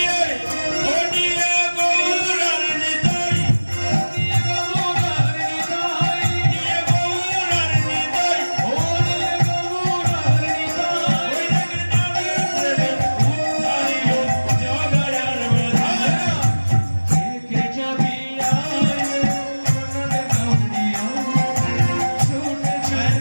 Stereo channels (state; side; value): inverted; both; correlation -1.00